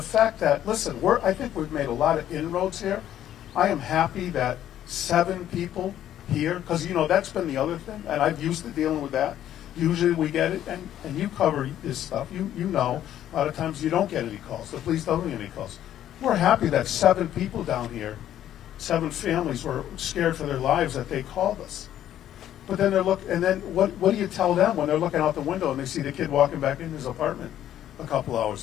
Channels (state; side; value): quieter; right; 11.5 dB